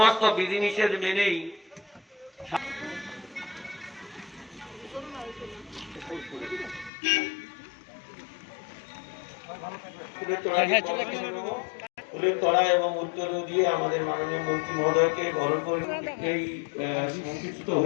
বিধিনিষেধ মেনেই ফুলের তলা এবং উত্তর দিয়ে আমাদের মাননীয় মন্ত্রী মহোদয়কে বরণ করে এই সংযুক্ত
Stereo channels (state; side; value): drops out; right; at 6.9 s